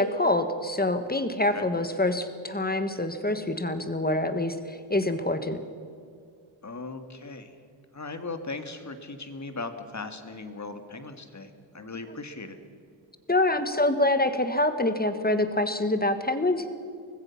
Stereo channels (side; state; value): both; normal; correlation 0.12